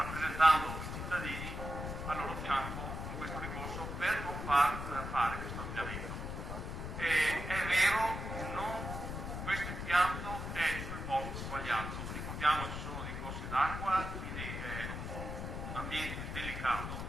i cittadini al loro fianco in questo ricorso per non fare questo ampliamento. È vero, questo impianto è sul posto sbagliato, ricordiamo ci sono dei corsi d'acqua, quindi è un ambiente delicato,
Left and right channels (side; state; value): left; noise; rumble, 5 dB below the sound